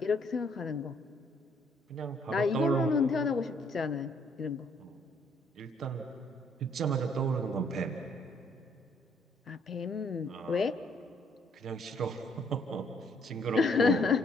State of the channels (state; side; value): normal; both; correlation 0.66